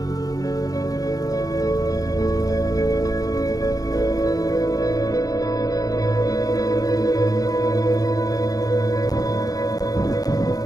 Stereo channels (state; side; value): late; right; 0.18 ms